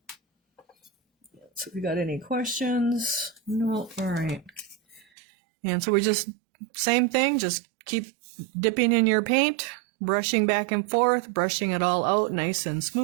So if you got any questions? No. All right. And so we just, same thing, just keep dipping in your paint, brushing back and forth, brushing it all out nice and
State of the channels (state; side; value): drops out; left; at 5.1 s